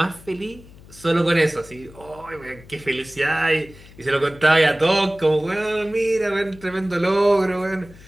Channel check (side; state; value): left; noise; hum, 21 dB below the sound